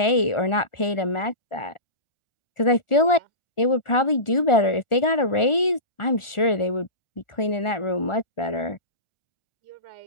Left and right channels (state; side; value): late; right; 1.4 ms